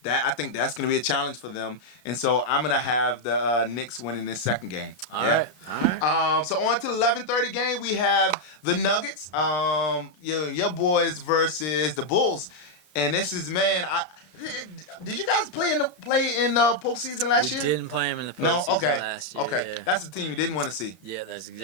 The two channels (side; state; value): right; late; 33 ms